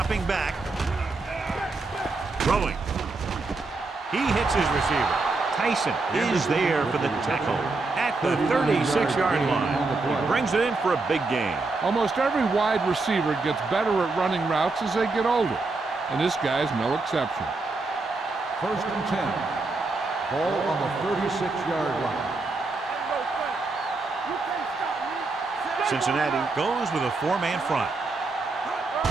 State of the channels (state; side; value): quieter; left; 3.6 dB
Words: back. Throwing. He hits his receiver. Tyson is there for the tackle at the 36-yard line. He brings it in for a big gain. Almost every wide receiver gets better at running routes as they get older, and this guy's no exception. 1st and 10. Ball on the 36-yard line. Cincinnati goes with a 4-man front.